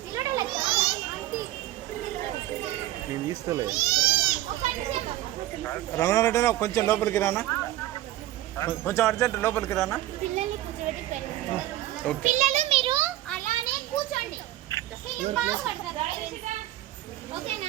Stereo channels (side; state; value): left; quieter; 15.0 dB